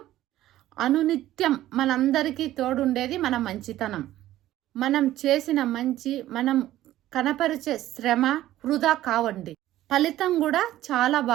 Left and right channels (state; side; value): quieter; left; 14.2 dB